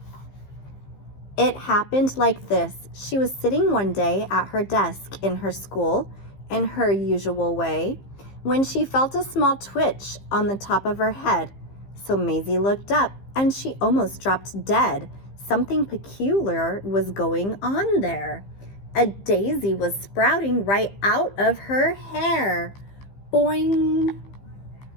It happened like this. She was sitting one day at her desk in her school, in her usual way, when she felt a small twitch on the top of her head. So Mayzie looked up, and she almost dropped dead. Something peculiar was going on there. A daisy was sprouting right out of her hair. Boing!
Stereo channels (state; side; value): late; right; 15 ms